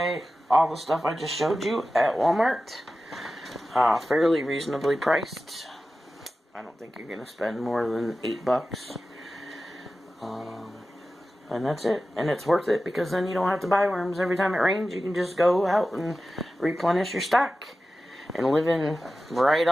all the stuff I just showed you at Walmart. Fairly reasonably priced. I don't think you're going to spend more than $8. And that's it. And it's worth it because then you don't have to buy worms every time it rains. You can just go out and replenish your stock. And living right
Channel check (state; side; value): normal; both; correlation 0.94